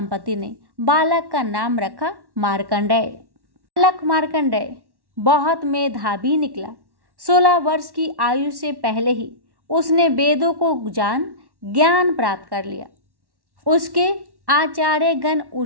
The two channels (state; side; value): late; left; 1.1 ms